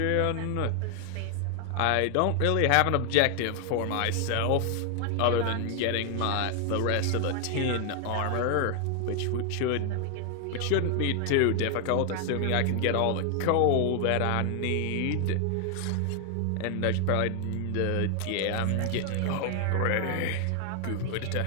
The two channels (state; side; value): different; both; correlation 0.00